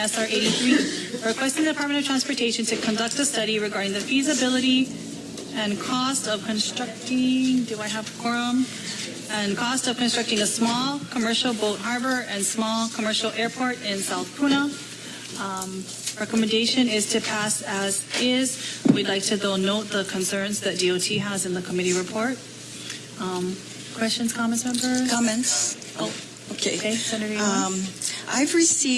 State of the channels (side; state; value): both; identical; correlation 1.00